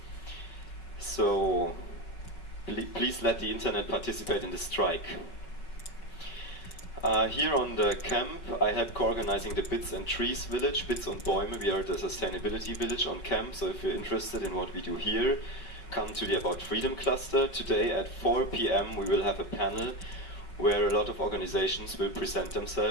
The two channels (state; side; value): late; right; 5.2 ms